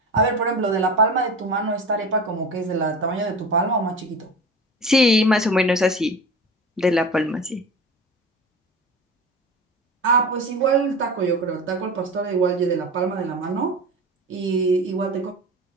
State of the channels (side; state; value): both; normal; correlation 0.32